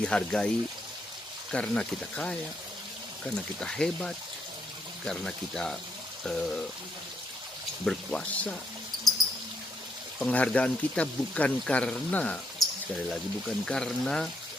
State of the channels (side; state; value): both; normal; correlation 0.77